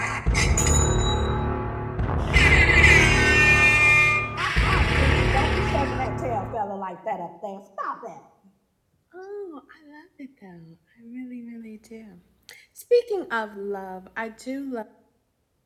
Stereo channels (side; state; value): both; identical; correlation 1.00